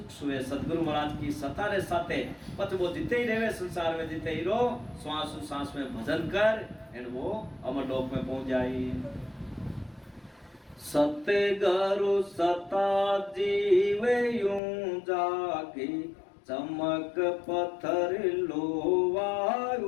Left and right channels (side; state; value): right; drops out; at 14.6 s